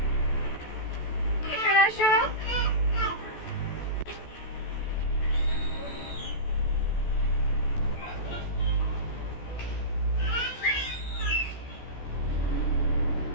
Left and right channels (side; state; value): right; late; 14 ms